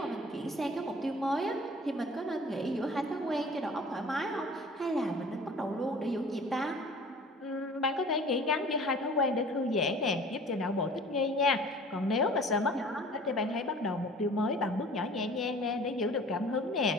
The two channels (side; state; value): both; normal; correlation 0.46